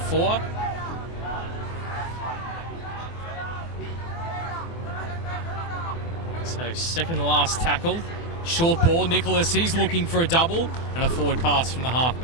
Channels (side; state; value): right; late; 24 ms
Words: So second to last tackle. Short ball, Nicholas, he's looking for a double, and a forward pass from the